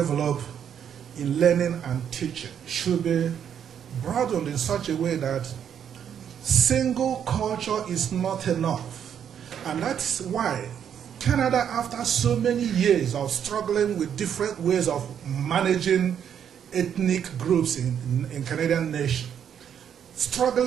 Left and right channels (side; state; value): left; quieter; 8.7 dB